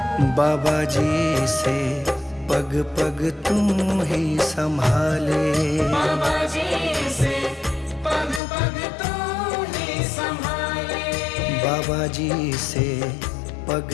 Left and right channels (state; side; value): drops out; right; at 8.4 s